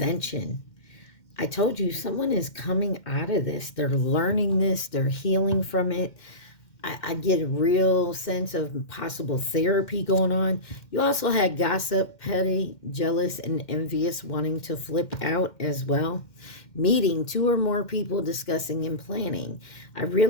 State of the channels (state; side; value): late; right; 2.1 ms